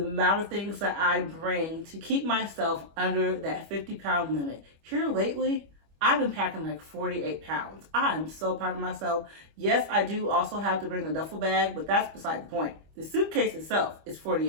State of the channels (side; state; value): left; late; 25 ms